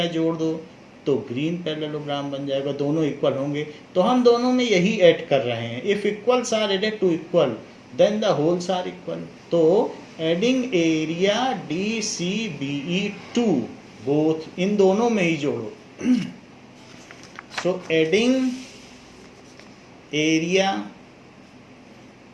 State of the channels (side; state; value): both; identical; correlation 1.00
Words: जोड़ दो तो ग्रीन पैरेललोग्राम बन जाएगा, दोनों इक्वल होंगे। तो हम दोनों में यही ऐड कर रहे हैं, if equals are added to equal then the wholes are equal. तो adding area DCBE to both, इन दोनों में ही जोड़ो। So adding area